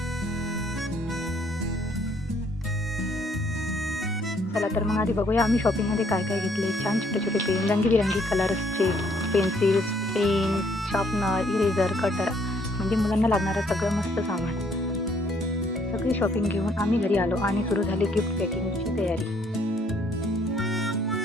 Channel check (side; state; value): both; normal; correlation 0.66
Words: चला तर मग आधी बघूया आम्ही शॉपिंगमध्ये काय काय घेतले. छान छोटे छोटे पेन, रंगीबिरंगी कलर्सचे pencils, pen, sharpener, eraser, cutter, म्हणजे मुलांना लागणारं सगळं मस्त सामान. सगळी शॉपिंग घेऊन आम्ही घरी आलो आणि सुरू झाली गिफ्ट पॅकिंगची तयारी.